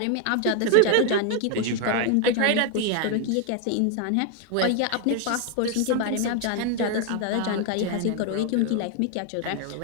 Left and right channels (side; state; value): both; different; correlation 0.01